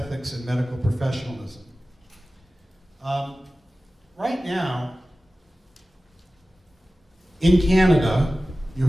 and medical professionalism. Right now, in Canada, you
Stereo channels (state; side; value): normal; both; correlation 0.96